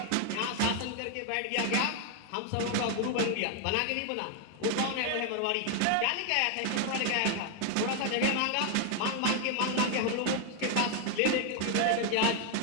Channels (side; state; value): both; different; correlation 0.01